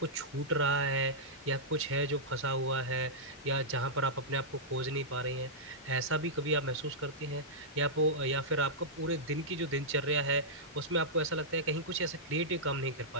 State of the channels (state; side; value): normal; both; correlation -0.12